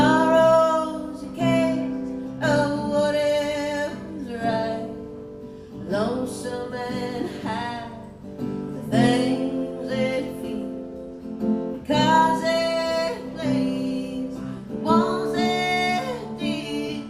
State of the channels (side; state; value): both; identical; correlation 1.00